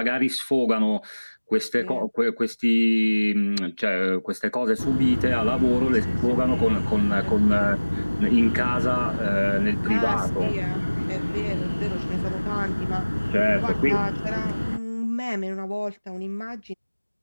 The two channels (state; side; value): inverted; both; correlation -1.00